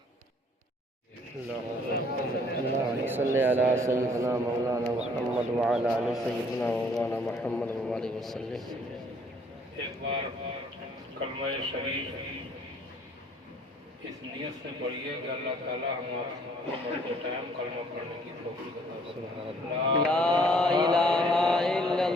एक बार कलमा शरीफ इस नियत से पढ़िए कि अल्लाह ताला हमारे मरते टाइम कलमा पढ़ने की तौफीक अता फरमाए। ला इलाहा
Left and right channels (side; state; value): both; normal; correlation 0.60